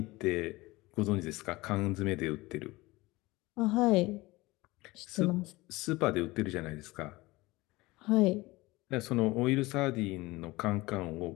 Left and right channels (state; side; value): quieter; right; 21.0 dB